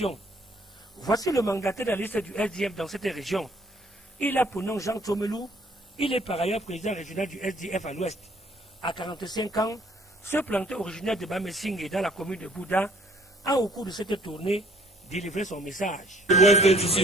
Voici le mandataire de la liste du SDF dans cette région. Il a pour nom Jean Tomelou. Il est par ailleurs président régional du SDF à l'Ouest. À 45 ans, ce planteur originaire de Bamessing dans la commune de Bouddha a au cours de cette tournée délivré son message. L'Ouest d'ici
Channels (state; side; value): normal; both; correlation 0.59